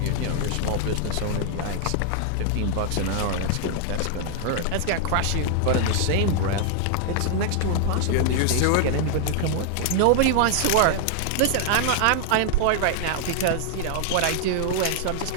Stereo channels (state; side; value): different; both; correlation 0.00